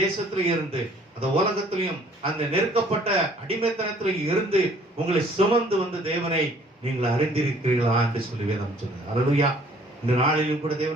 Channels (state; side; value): normal; both; correlation 0.57